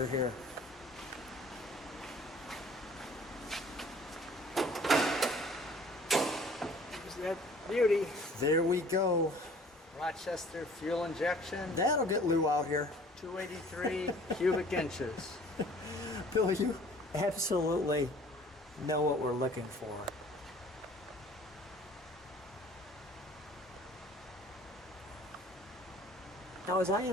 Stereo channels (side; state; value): both; normal; correlation 0.52